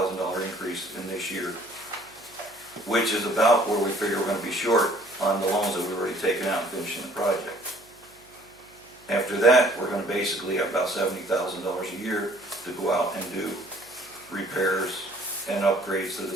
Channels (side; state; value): right; noise; hum, 30 dB below the sound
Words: increase in this year, which is about where we figure we're gonna be short on the loans that we've already taken out and finishing the project. After that, we're gonna basically have about $70,000 a year to go out and do repairs and upgrades to the